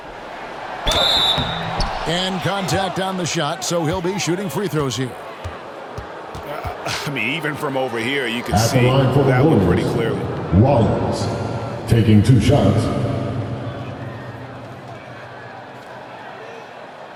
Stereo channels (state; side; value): identical; both; correlation 1.00